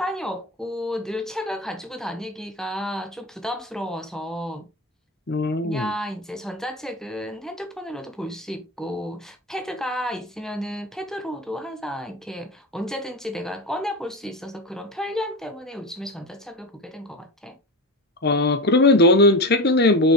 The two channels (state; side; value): normal; both; correlation 0.22